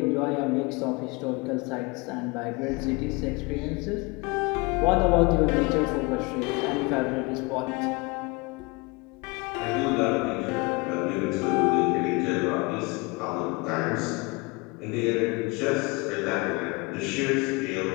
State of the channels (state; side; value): quieter; right; 27.4 dB